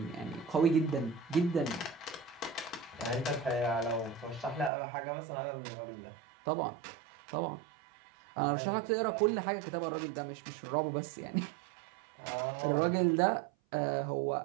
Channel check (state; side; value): drops out; left; at 4.7 s